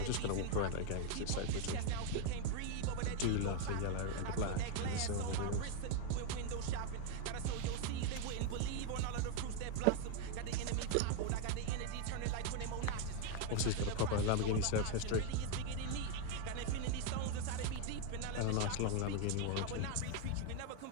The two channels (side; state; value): both; different; correlation 0.01